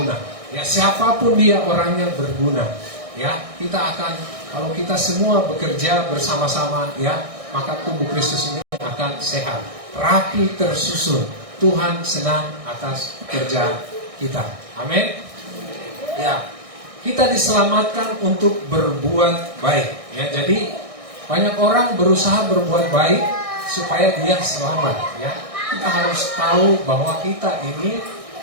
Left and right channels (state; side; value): late; left; 1.6 ms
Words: Ya, siapapun dia orangnya berguna. Ya, kita akan, kalau kita semua bekerja bersama-sama, ya, maka tubuh Kristus ini akan sehat, rapi, tersusun. Tuhan senang atas kerja kita. Amin. Ya, kita diselamatkan untuk berbuat baik. Ya, jadi banyak orang berusaha berbuat baik supaya dia selamat. Ya, kita harus tahu bahwa kita ini,